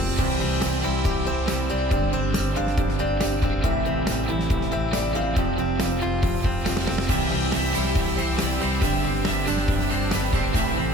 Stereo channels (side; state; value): both; normal; correlation 0.56